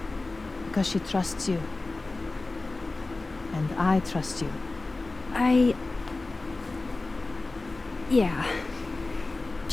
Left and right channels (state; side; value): quieter; right; 3.3 dB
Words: Because she trusts you. And I trust you. Yeah.